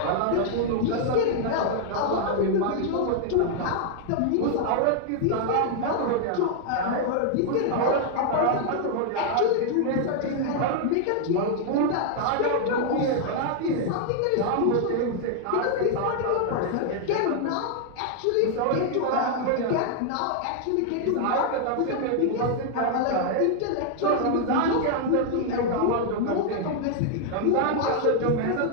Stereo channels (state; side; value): different; both; correlation 0.00